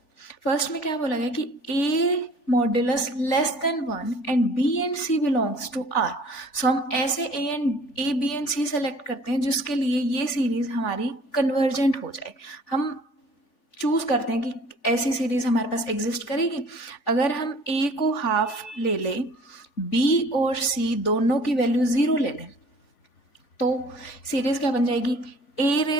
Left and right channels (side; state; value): right; late; 3.5 ms